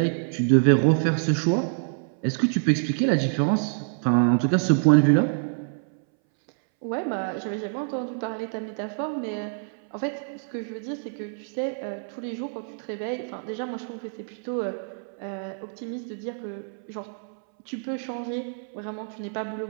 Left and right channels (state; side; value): silent; left; 61 dB below the other